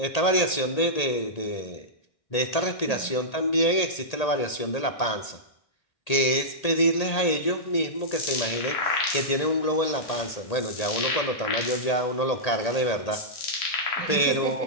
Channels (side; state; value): right; late; 1.8 ms